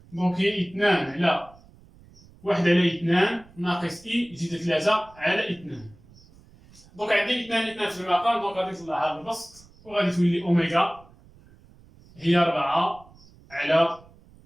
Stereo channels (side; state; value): right; noise; rumble, 25 dB below the sound